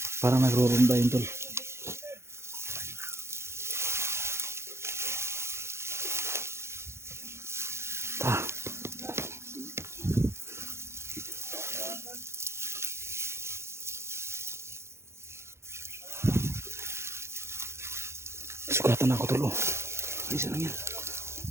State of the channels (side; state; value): left; late; 0.13 ms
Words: Parang nagrurunda yun tol. Sugatan ako tol. Oh. Isa lang yan.